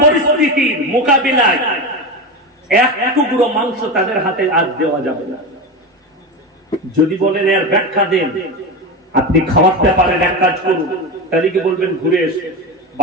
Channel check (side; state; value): both; normal; correlation 0.20